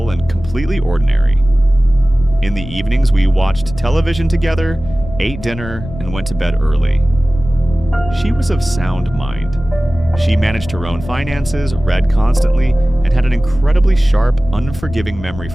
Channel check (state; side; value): noise; left; rumble, 12 dB below the sound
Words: and completely ordinary. In the evenings, we watched television together, ate dinner, and went to bed early. She was of sound mind. She managed her own finances, read constantly, and had an incredibly sharp, unforgiving memory